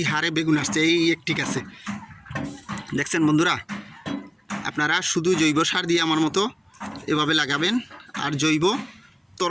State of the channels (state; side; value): identical; both; correlation 1.00